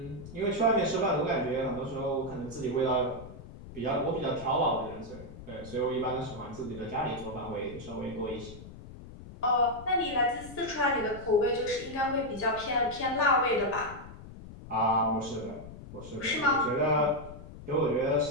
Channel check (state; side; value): noise; left; rumble, 15 dB below the sound